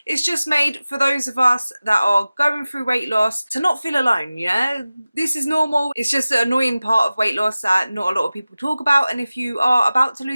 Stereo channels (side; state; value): both; inverted; correlation -0.97